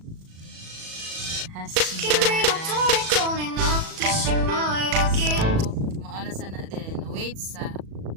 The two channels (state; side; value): late; left; 37 ms